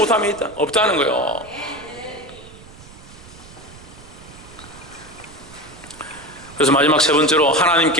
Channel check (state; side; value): noise; right; rumble, 20 dB below the sound